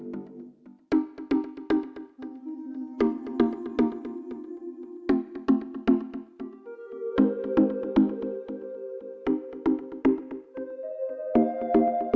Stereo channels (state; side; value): identical; both; correlation 1.00